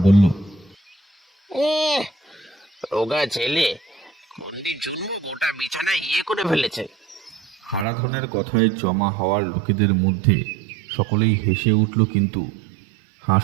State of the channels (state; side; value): drops out; left; at 7.9 s